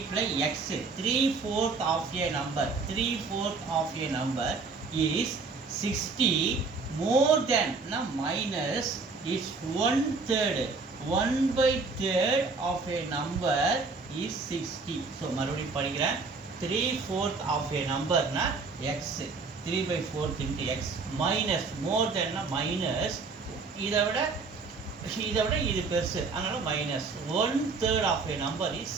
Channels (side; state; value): left; quieter; 4.3 dB